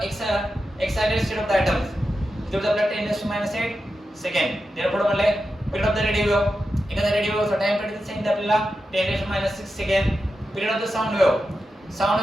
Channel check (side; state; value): both; normal; correlation 0.90